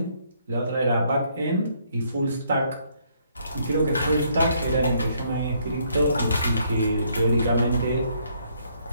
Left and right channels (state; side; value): inverted; both; correlation -0.69